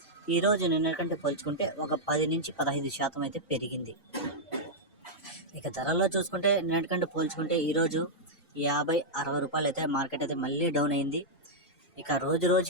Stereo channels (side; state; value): both; normal; correlation -0.06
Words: ఈరోజు నిన్నటికంటే పోల్చుకుంటే ఒక 10 నుంచి 15% అయితే పెరిగింది. ఇక ధరల్లో చూసుకుంటే నిన్నటికంటే పోల్చుకుంటే ఈరోజు 50-60 రూపాయలు అయితే మార్కెట్ అయితే మళ్ళీ డౌన్ అయింది. ఇక రోజు